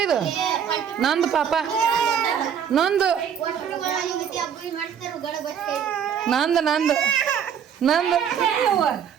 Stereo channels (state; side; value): quieter; left; 8.1 dB